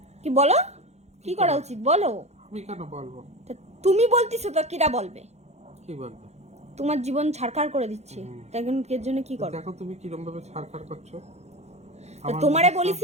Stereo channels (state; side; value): late; left; 0.32 ms